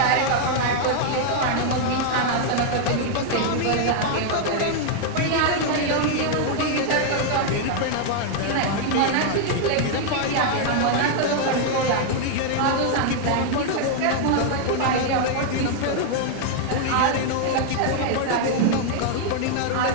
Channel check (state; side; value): different; both; correlation 0.00